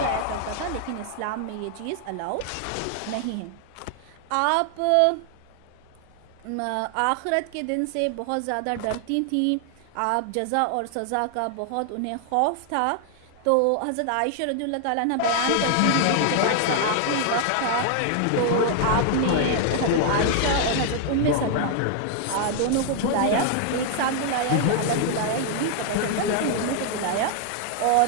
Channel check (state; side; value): different; both; correlation 0.00